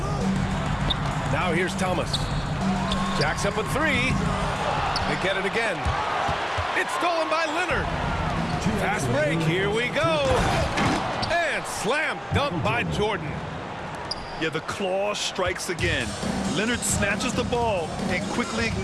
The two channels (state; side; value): identical; both; correlation 1.00